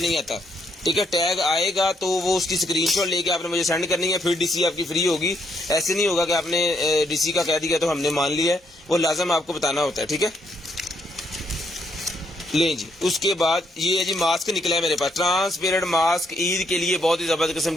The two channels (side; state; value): both; normal; correlation 0.74